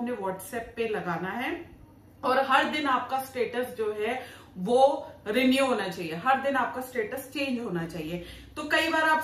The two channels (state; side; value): identical; both; correlation 1.00